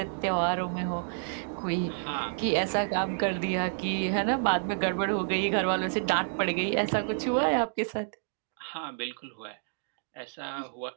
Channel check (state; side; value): silent; left; digital silence